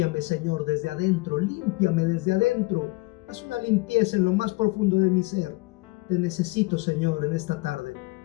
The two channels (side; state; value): right; quieter; 23.2 dB